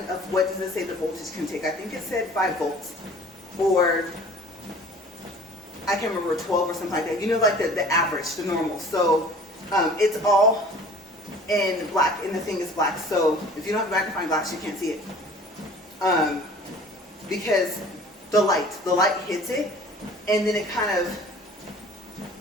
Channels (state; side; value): normal; both; correlation 0.47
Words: of what does it say the voltage can take? I think it said 5 volts, or I can't remember, 12 or something like that. You know, like the average, the normal. So it's all in black, and the thing is black. So if you don't have a magnifying glass, you can't see it. Because the light hits it, and then it kind of